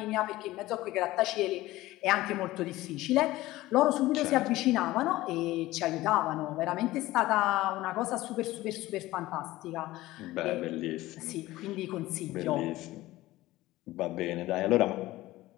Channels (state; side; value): quieter; right; 17.4 dB